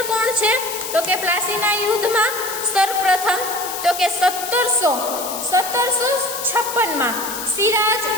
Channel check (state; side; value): noise; left; hiss, 7 dB below the sound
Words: કોણ છે? તો કે પ્લાસીના યુદ્ધમાં સર્વપ્રથમ તો કે 1756માં સિરાજ